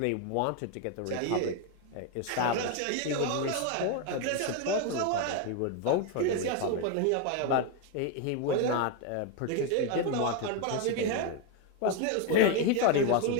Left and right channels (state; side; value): different; both; correlation 0.02